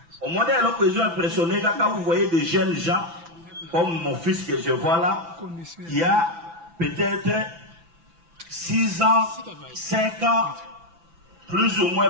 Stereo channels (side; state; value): left; late; 6.0 ms